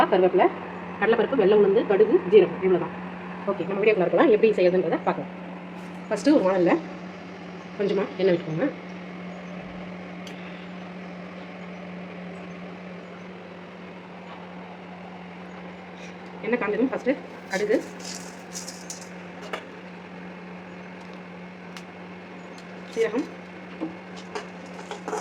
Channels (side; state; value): both; identical; correlation 1.00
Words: கருவேப்பிலை, கடலைப்பருப்பு, வெள்ளை உளுந்து, கடுகு, ஜீரகம், இவ்வளோ தான். ஓகே, நம்ம வீடியோக்குள்ள இருக்கலாம் எப்படி செய்யறதுன்றதை பார்க்கலாம். ஃபஸ்ட்டு ஒரு வானலில் கொஞ்சமாக எண்ணெய் விட்டுக்கோங்க. எண்ணெய் காஞ்சதும் ஃபஸ்ட்டு கடுகு, சீரகம்,